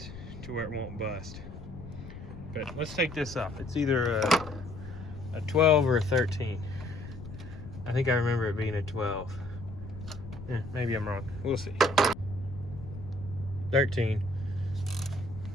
to where it won't bust. But let's take this off. It's either a 12 or a 13. I think I remember it being a 12. Yeah, maybe I'm wrong. We'll see. 13.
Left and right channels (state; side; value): noise; left; rumble, 12 dB below the sound